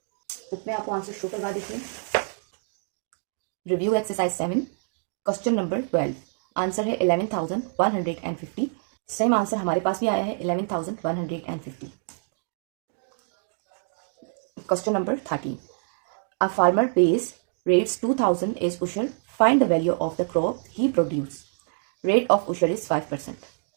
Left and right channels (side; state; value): left; silent; digital silence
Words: बुक में आपको आंसर शो करवा देते हैं। Review exercise 7 question number 12, answer है 11,150। सेम आंसर हमारे पास भी आया है 11,150। Question number 13, a farmer pays rates 2,000 is उशर, find the value of the crop he produce, rate of उशर इज 5%।